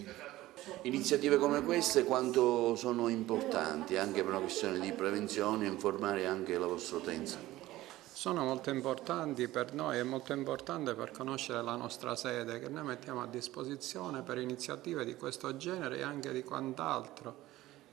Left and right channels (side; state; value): left; quieter; 16.5 dB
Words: Iniziative come queste quanto sono importanti anche per una questione di prevenzione e informare anche la vostra utenza? Sono molto importanti per noi, è molto importante per conoscere la nostra sede che noi mettiamo a disposizione per iniziative di questo genere e anche di quant'altro,